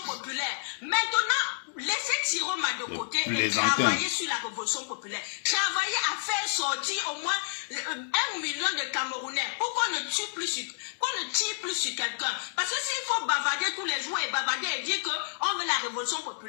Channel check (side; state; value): right; silent; 58 dB below the other